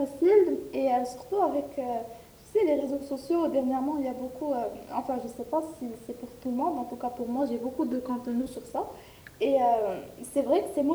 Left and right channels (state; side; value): identical; both; correlation 1.00